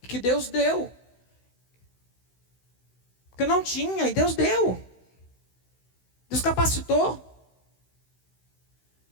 que Deus deu. Que eu não tinha, e Deus deu. Deus capacitou.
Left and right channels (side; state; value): right; late; 16 ms